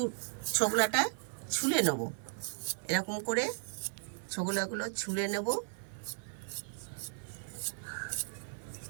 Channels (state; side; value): silent; left; 54 dB below the other